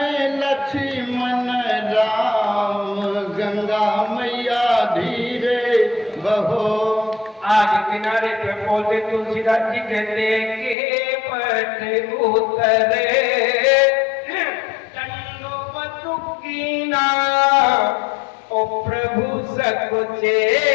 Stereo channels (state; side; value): drops out; right; at 10.8 s